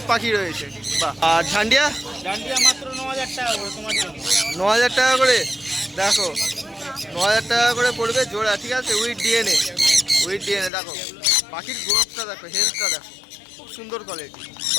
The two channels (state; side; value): drops out; right; at 10.7 s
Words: পাখি রয়েছে। বাহ, আর ঝান্ডিয়া ডান্ডিয়া মাত্র 9,000 টাকা করে তোমার জন্য। 9,000 টাকা করে। দেখো 9,000 টাকা করে পড়বে জোড়া, ঠিক আছে, উইথ ডিএনএ, উইথ ডিএনএ। দেখো পাখির গ্রোথটা দেখো, হেলথটা দেখো, খুব সুন্দর কোয়ালিটি।